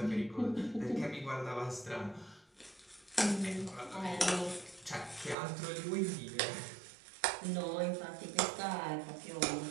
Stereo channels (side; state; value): left; drops out; at 5.4 s